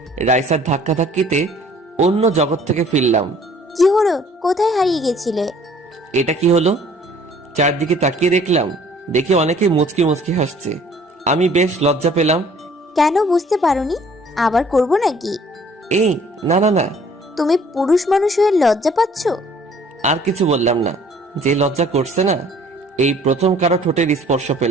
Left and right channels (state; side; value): normal; both; correlation 0.55